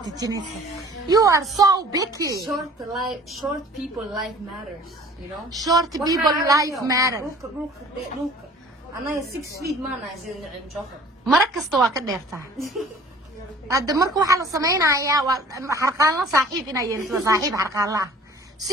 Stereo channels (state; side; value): normal; both; correlation 0.49